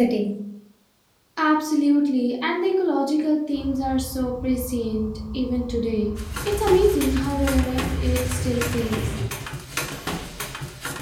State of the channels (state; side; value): identical; both; correlation 1.00